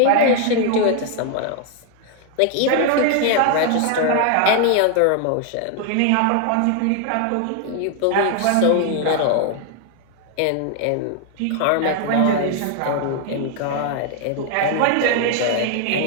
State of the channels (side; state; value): both; different; correlation 0.00